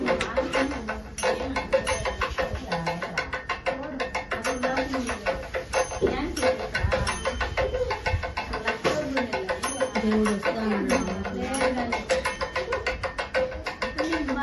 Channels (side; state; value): both; identical; correlation 1.00